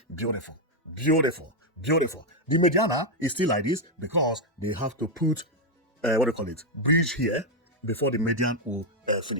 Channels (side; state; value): both; normal; correlation 0.01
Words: beautiful, beautiful, beautiful. The Mediana is still like this because they have to put what do you call it, bridge here before the median will